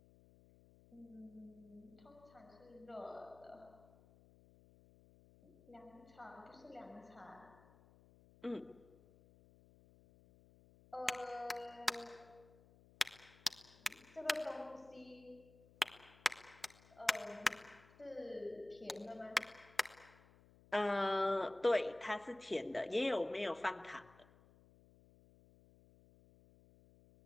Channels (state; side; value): noise; left; hum, 24 dB below the sound